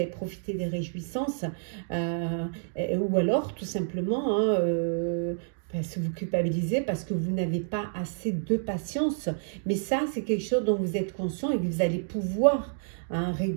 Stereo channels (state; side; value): silent; left; digital silence